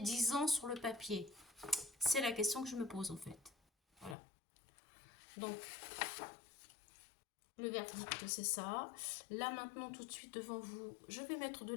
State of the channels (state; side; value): drops out; right; at 4.2 s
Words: ans sur le papier? C'est la question que je me pose en fait. Voilà. Donc le verdict c'est ça. Là maintenant tout de suite devant vous, je vais mettre de